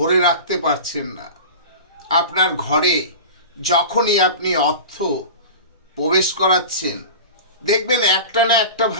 রাখতে পারছেন না। আপনার ঘরে যখনই আপনি অর্থ প্রবেশ করাচ্ছেন, দেখবেন একটা না একটা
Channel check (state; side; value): inverted; both; correlation -0.33